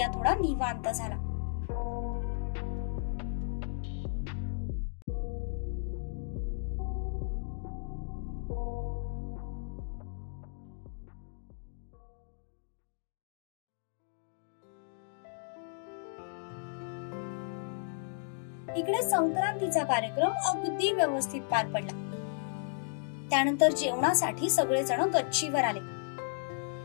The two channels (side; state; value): right; silent; digital silence